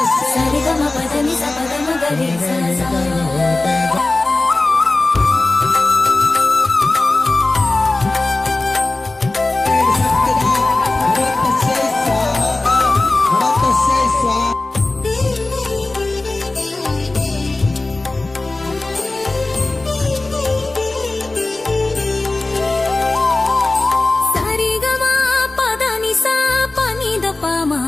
సరిగమ పదని స పదమ గరిస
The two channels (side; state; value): right; quieter; 3.1 dB